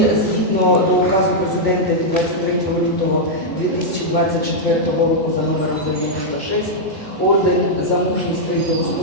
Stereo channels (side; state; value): both; normal; correlation -0.04